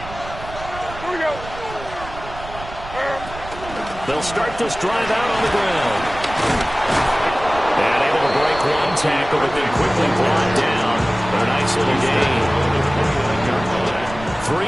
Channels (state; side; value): noise; right; rumble, 13 dB below the sound